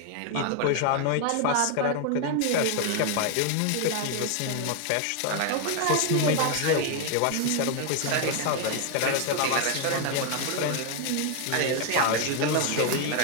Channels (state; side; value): different; both; correlation 0.01